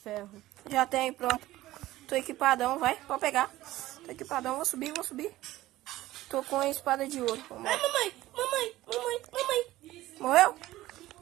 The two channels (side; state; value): left; quieter; 16.2 dB